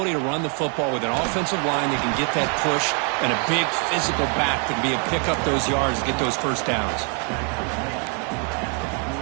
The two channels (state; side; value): quieter; left; 39.0 dB